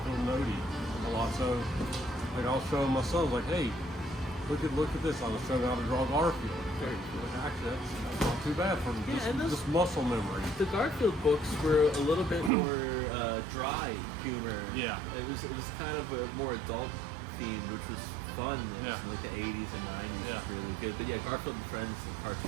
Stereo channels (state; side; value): drops out; left; at 12.5 s